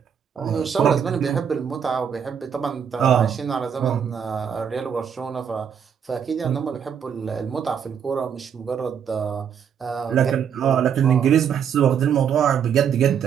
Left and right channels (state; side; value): quieter; left; 7.8 dB